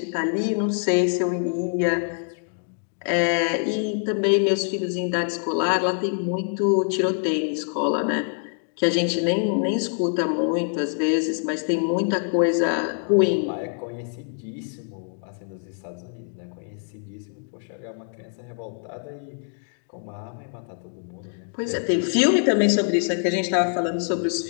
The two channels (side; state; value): right; silent; 59 dB below the other